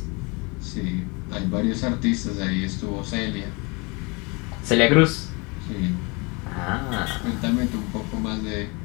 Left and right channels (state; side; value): quieter; right; 29.0 dB